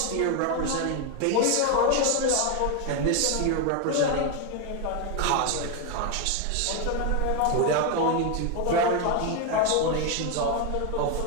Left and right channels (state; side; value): different; both; correlation 0.01